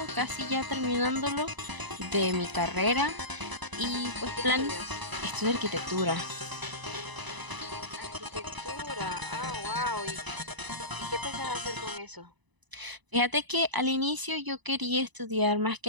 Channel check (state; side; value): late; left; 1.0 ms